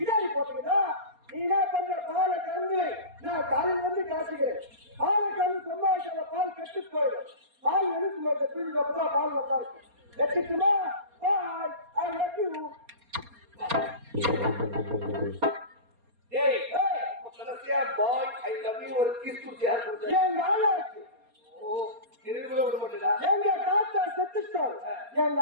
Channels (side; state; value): left; late; 4.3 ms